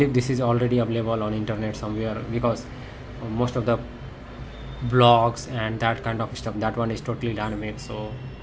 this is already available on internet somewhere, because most of the blogs and that kind of stuff, that one is totally dynamic, so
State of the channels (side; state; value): both; identical; correlation 1.00